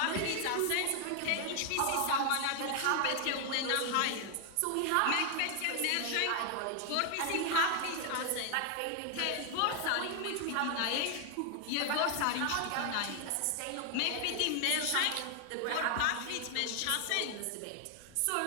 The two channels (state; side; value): different; both; correlation 0.00